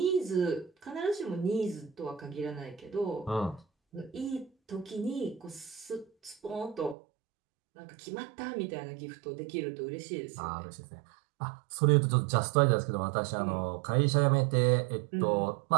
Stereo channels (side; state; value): left; drops out; at 7.0 s